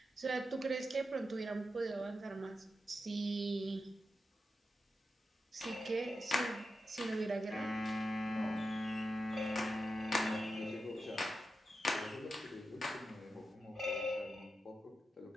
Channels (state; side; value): normal; both; correlation 0.89